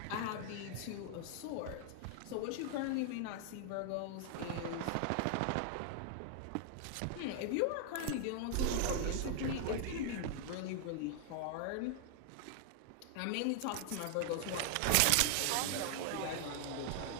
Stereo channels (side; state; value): both; different; correlation -0.01